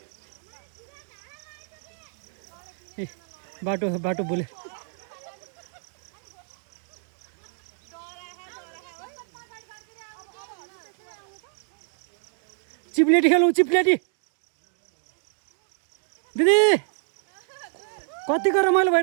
ए बाटो बाटो भुले चिप्लेटी खेलौँ चिप्लेटी दिदी कतिको रमाइलो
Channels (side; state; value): left; silent; digital silence